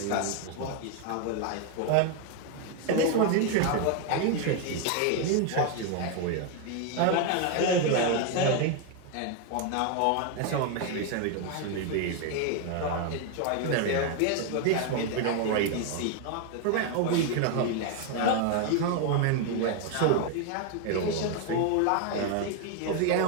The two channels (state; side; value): different; both; correlation 0.01